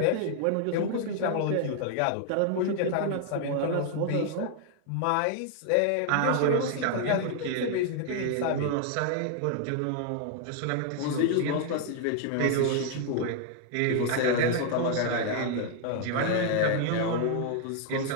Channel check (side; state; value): both; different; correlation 0.00